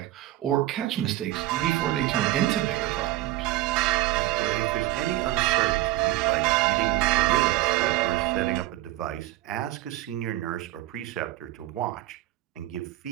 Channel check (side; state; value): left; quieter; 16.0 dB